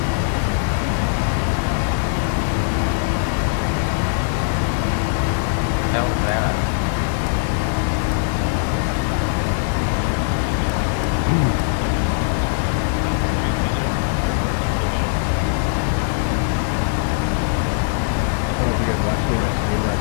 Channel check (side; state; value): right; silent; digital silence